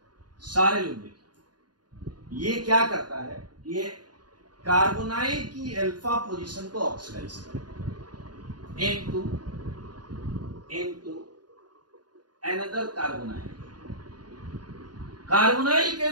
सारे लोग देखिए, ये क्या करता है, ये कार्बोनाइल की अल्फा पोजीशन को ऑक्सीडाइज करता है इनटू अनदर कार्बोनाइल, कार्बोनाइल के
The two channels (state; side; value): late; left; 0.70 ms